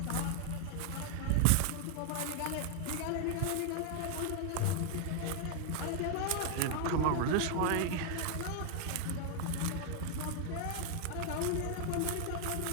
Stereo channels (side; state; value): both; different; correlation 0.00